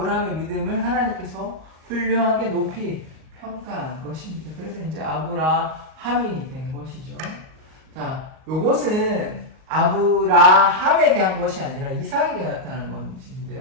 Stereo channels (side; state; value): left; late; 38 ms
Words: 믿음을 하나님께서 훌륭하게 높이 평가한 것입니다. 그래서 이제 아브라함이 된 것이죠. 자, 요것은 아브라함에게 한 것이 아니라 이삭에게 나타난